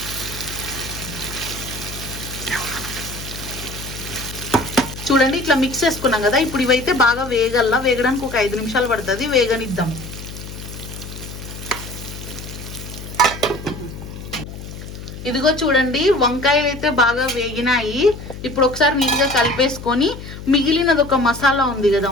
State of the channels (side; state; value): left; noise; hum, 11 dB below the sound